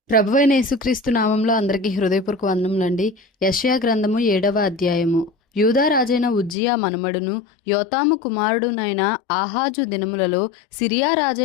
ప్రభువైన యేసుక్రీస్తు నామంలో అందరికీ హృదయపూర్వక వందనములండి. యెషయా గ్రంథము 7వ అధ్యాయము. యూదా రాజైన ఉజ్జియా మనుమడును యోతాము కుమారుడునైన ఆహాజు దినములలో సిరియా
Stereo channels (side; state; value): right; drops out; at 6.6 s